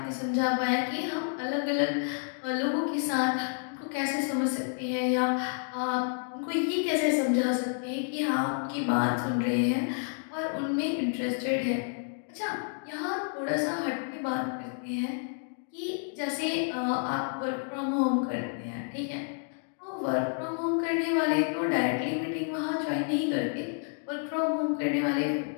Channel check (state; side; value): silent; right; 58 dB below the other